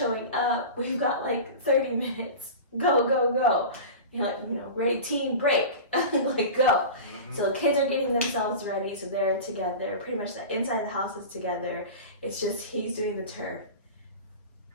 up. We've got 30 minutes. Go, go, go. Ready, team, break. Go. Mm-hmm. So kids are getting themselves ready. So they're together. Pretty much the inside of the house is together. It's just he's doing the turf.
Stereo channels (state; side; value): inverted; both; correlation -0.31